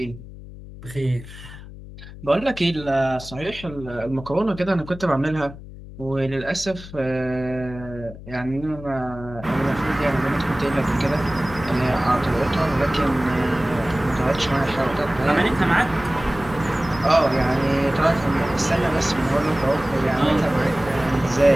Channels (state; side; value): noise; left; hum, 15 dB below the sound